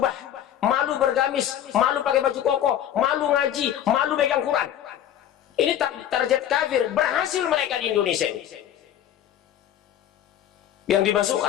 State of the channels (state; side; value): quieter; right; 10.8 dB